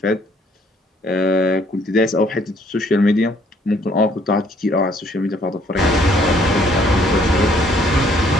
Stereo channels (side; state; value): both; normal; correlation 0.63